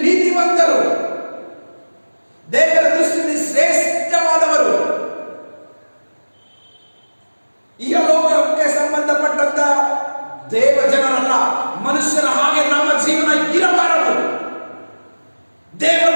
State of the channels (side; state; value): both; inverted; correlation -1.00